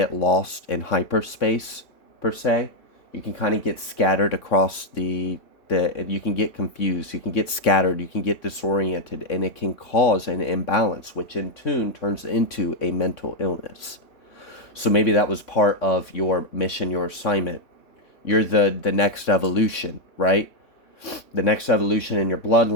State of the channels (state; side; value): late; right; 3.6 ms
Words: lost in hyperspace, per se. You can kind of get scattered across you can get confused, you can get scattered, you can get disoriented, and it can cause an imbalance, which in turn turns into a mental illness. So maybe that was part of your mission, your assignment. You're the next evolution, right? The next evolution in your